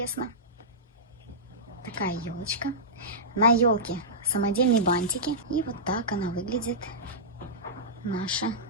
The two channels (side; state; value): both; normal; correlation -0.14